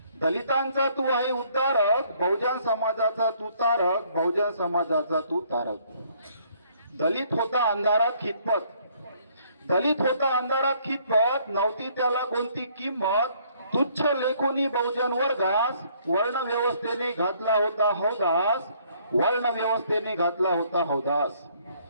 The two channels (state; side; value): inverted; both; correlation -0.64